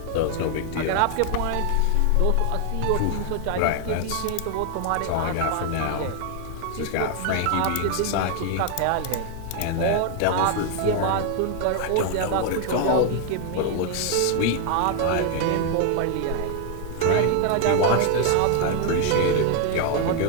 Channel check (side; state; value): both; different; correlation 0.01